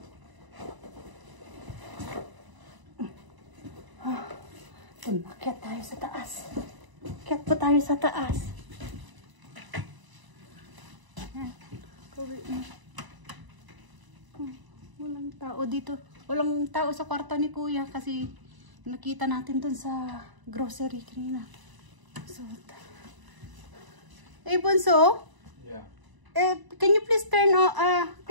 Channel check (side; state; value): left; late; 1.0 ms